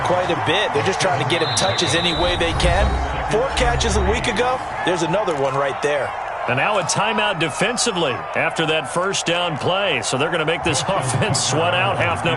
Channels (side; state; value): both; identical; correlation 1.00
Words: quite a bit. They're just trying to get him touches any way they can. 4 catches a week ago. There's another one right there. And now a timeout defensively after that first down play. So they're going to make this offense sweat out half